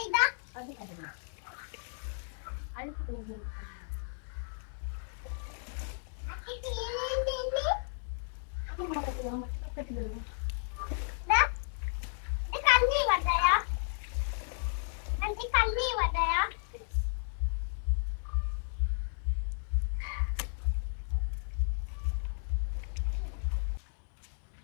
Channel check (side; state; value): right; silent; digital silence